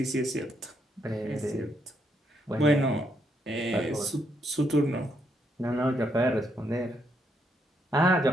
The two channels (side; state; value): both; normal; correlation 0.76